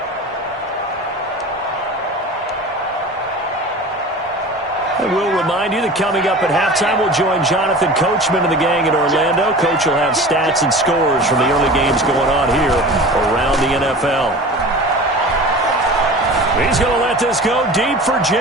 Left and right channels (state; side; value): normal; both; correlation 0.37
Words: And we'll remind you that coming up at halftime, we'll join Jonathan Coachman and the gang in Orlando. Coach will have stats and scores from the early games going on here around the NFL. He's going to let this go deep for